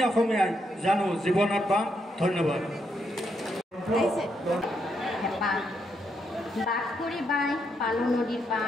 অসমীয়াই জানো জীৱনত পাম ধন্যবাদ বাস কৰি বাই পালো নদীৰ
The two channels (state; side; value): normal; both; correlation 0.79